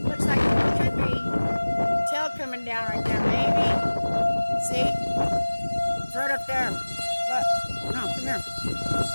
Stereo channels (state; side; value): inverted; both; correlation -1.00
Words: Looks like it could be tail coming down right there. Maybe. See? It's right up there. Look. No, come here.